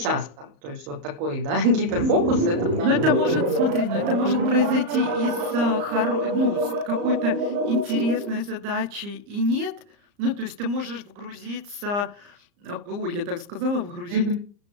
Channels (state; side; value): late; left; 34 ms